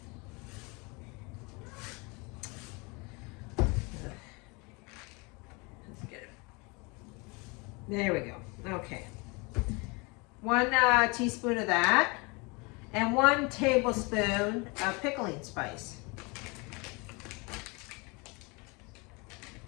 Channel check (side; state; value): right; quieter; 28.5 dB